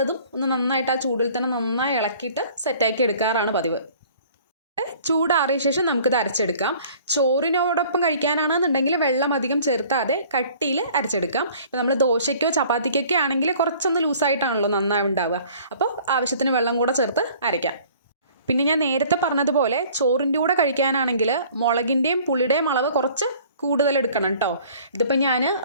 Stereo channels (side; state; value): both; inverted; correlation -0.52